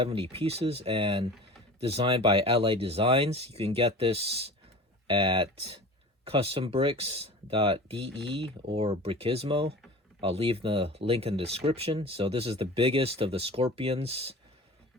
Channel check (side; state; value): both; normal; correlation 0.37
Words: pieces and designed by LA Designs. You can get this at custombricks.de or Brickismo. I'll leave the link in the description. So this is the biggest of the Scorpions